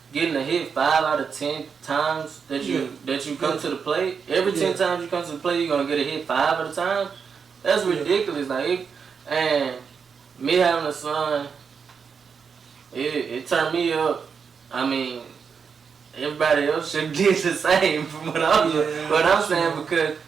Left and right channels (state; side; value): quieter; left; 6.1 dB